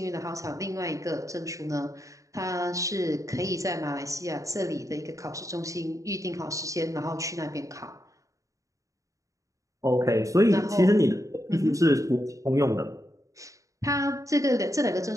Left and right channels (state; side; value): late; left; 0.16 ms